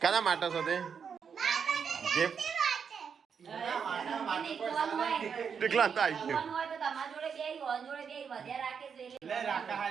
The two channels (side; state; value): left; quieter; 6.7 dB